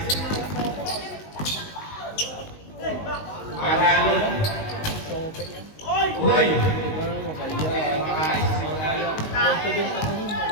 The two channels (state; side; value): late; right; 19 ms